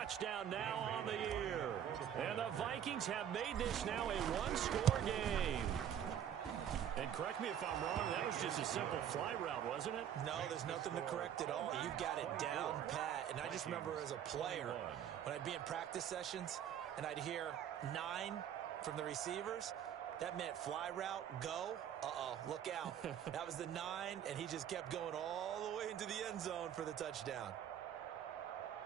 now on the year. And the Vikings have made this now a one-score game. And correct me if I'm wrong, that was just a simple fly route, wasn't it? No, there's nothing to correct at all. You've got it down pat. And I just remember as a player, when I'd be in practice sessions and I'd hear 9 from the receivers, that meant fly route, go. Uh-oh, look out. That was the 9, and he just kept going all the way into the end zone for the touchdown.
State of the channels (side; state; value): left; quieter; 9.6 dB